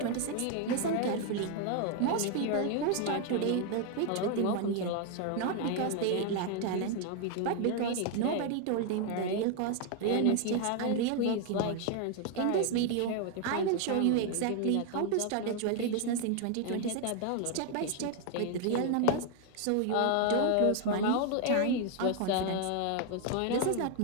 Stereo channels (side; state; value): both; different; correlation 0.00